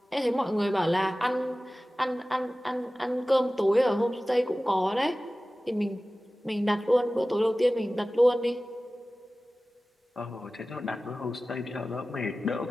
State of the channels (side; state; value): both; normal; correlation 0.97